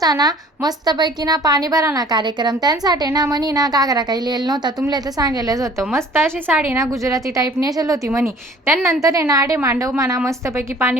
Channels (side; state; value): both; normal; correlation 0.51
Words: ना मस्तपैकी ना पाणी भरा ना कार्यक्रम, त्यांसाठी ना म्हणी ना घागरा काही लिहिलं नव्हता, तुमले तर सांगायलाच होतं. मस्त अशी साडी ना गुजराती टाईप नेसेल होती म्हणी. त्यानंतर आहे ना आडे मांडव म्हणा मस्तपैकी